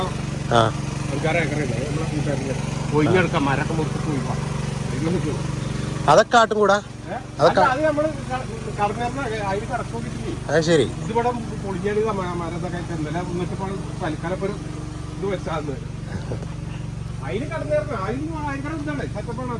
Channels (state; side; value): identical; both; correlation 1.00